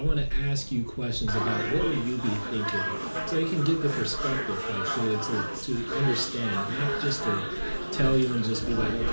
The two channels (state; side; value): inverted; both; correlation -1.00